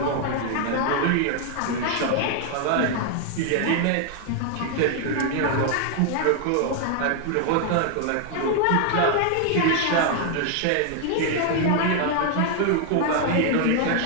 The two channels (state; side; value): different; both; correlation 0.00